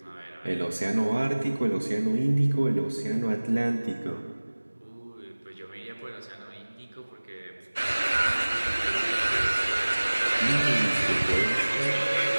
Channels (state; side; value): inverted; both; correlation -1.00